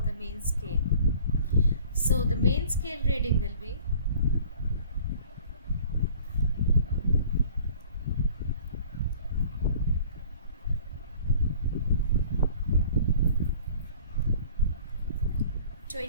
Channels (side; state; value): both; inverted; correlation -0.50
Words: the main scale. So the main scale reading will be